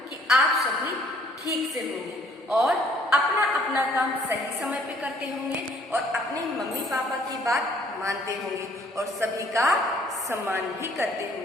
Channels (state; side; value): normal; both; correlation 0.60